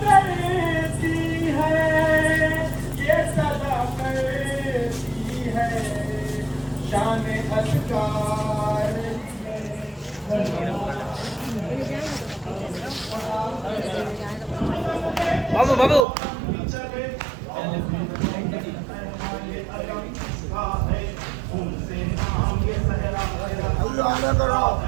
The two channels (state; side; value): drops out; left; at 16.1 s